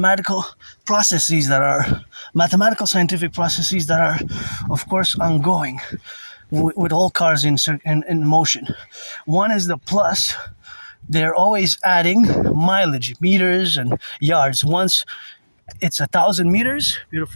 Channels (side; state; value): both; inverted; correlation -1.00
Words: scientific processes that are, of course, ongoing with all cars in motion. One is the plus. They're always adding mileage, meters and yards. Once it's 1,000 meters,